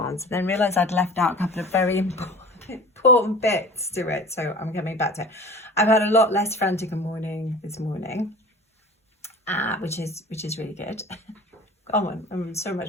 and then realised I'd left out a couple of very important bits to it, so I'm coming back to it. I've had a lot less frantic a morning this morning, which is really good. I'm so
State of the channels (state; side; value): normal; both; correlation 0.40